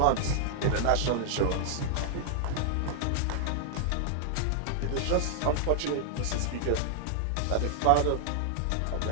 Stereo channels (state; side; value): different; both; correlation 0.00